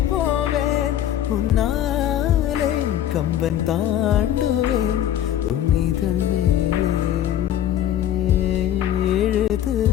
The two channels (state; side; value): quieter; right; 11.2 dB